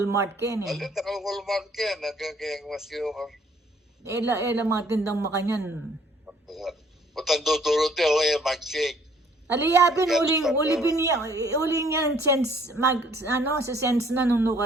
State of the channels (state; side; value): normal; both; correlation 0.60